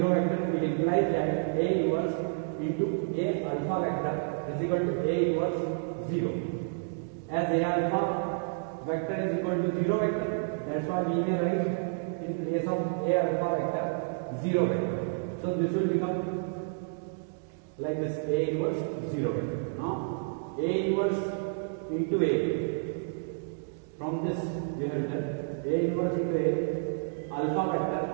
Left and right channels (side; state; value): left; silent; digital silence